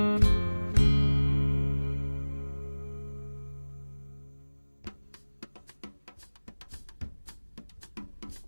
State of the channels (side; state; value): both; inverted; correlation -1.00